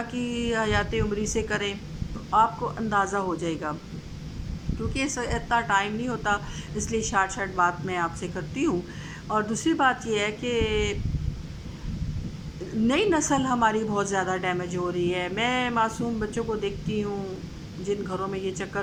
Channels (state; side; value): identical; both; correlation 1.00